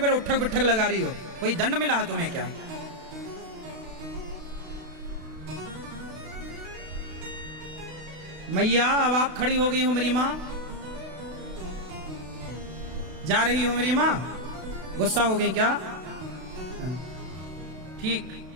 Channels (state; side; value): late; left; 32 ms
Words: उठक बिठक लगा रही हो? कोई दंड मिला है तुम्हें क्या? मैया अब आप खड़ी हो गई हो मेरी माँ, जा रही हो मेरी माँ, गुस्सा हो गई क्या? ठीक,